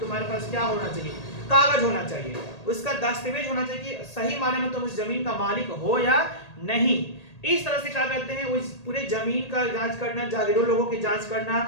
पास क्या होना चाहिए, कागज होना चाहिए, उसका दस्तावेज होना चाहिए, सही माने में तुम उस जमीन का मालिक हो या नहीं। इस तरह से क्या कहते हैं उस पूरे जमीन का जांच करना, जागीरों लोगों की जांच करना,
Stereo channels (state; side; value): late; right; 1.8 ms